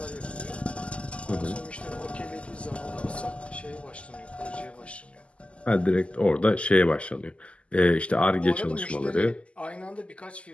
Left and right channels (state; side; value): late; right; 0.057 ms